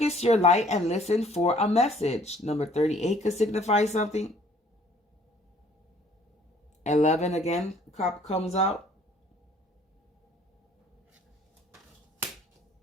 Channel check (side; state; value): both; normal; correlation 0.58